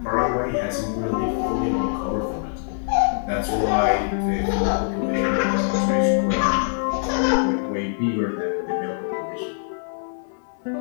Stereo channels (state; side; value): silent; right; 61 dB below the other